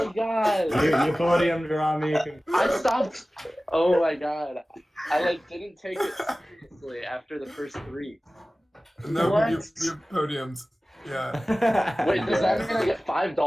god. You podiumed Rami. I stopped. Oh my god. I didn't take it seriously after the first 3. No, what? you podiumed. Yeah. Wait, does that mean I get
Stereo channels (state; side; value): normal; both; correlation 0.97